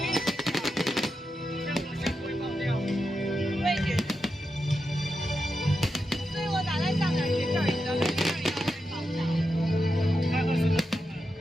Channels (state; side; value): normal; both; correlation 0.88